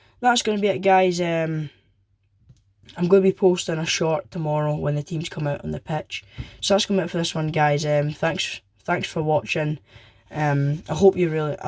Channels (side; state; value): both; identical; correlation 1.00